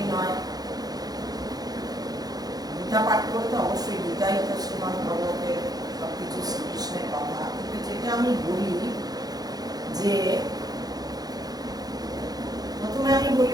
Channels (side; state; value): left; late; 0.19 ms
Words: নয়। গীতা পাঠ করতে অবশ্যই, গীতাই তো শ্রীমদ্ ভগবতের সবকিছু শ্রীকৃষ্ণের কথা। কিন্তু যেটা আমি বলি যে প্রথমে আমি